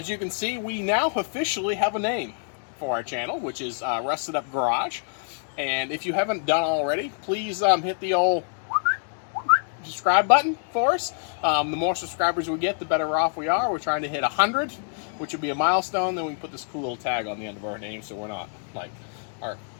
you can see, we now officially have a name for our channel, which is Rusted Up Garage. And if you haven't done already, please hit the old subscribe button for us. The more subscribers we get, the better off we are. We're trying to hit 100, which would be a milestone. Then we can put this cool little tag on the end of our name, so we're not like our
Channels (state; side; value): silent; right; 61 dB below the other